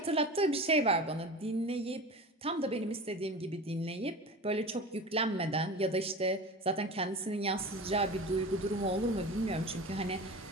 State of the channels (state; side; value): normal; both; correlation 0.32